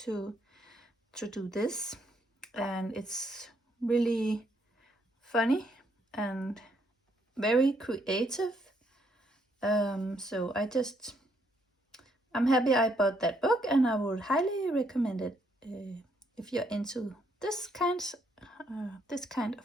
to do this. And it's really funny and very creative. So I'm happy I bought that book, and I would highly recommend it if you're into this kind of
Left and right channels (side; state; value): both; normal; correlation 0.72